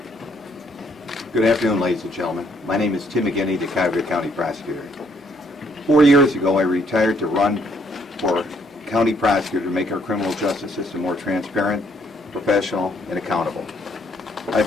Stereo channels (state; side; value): normal; both; correlation 0.69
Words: Good afternoon, ladies and gentlemen. My name is Tim McGinty, the Cuyahoga County Prosecutor. 4 years ago, I retired to run for County Prosecutor to make our criminal justice system more transparent, professional, and accountable. I